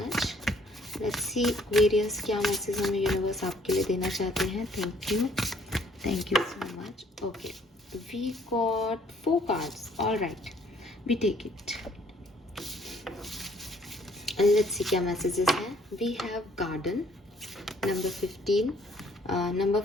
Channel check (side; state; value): both; normal; correlation 0.62